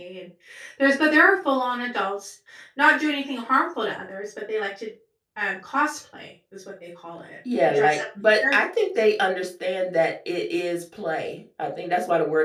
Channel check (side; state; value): both; identical; correlation 1.00